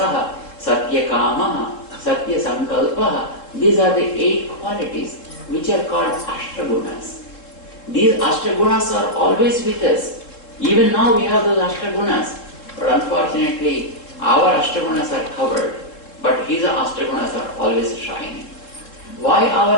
satyakamaha, satyasankalpaha. These are the 8 qualities which are called ashtagunas. These ashtagunas are always with us. Even now we have those ashtagunas. But unfortunately, our ashtagunas are covered. But his ashtagunas are always shining. Why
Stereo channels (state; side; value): late; right; 3.7 ms